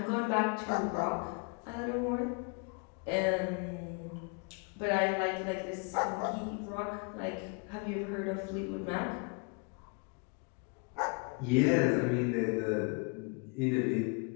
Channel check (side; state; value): right; quieter; 34.6 dB